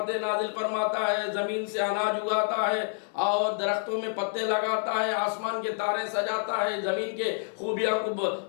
نازل فرماتا ہے، زمین سے اناج اگاتا ہے اور درختوں میں پتے لگاتا ہے، آسمان کے تارے سجاتا ہے، زمین کے خوبیاں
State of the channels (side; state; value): right; silent; 59 dB below the other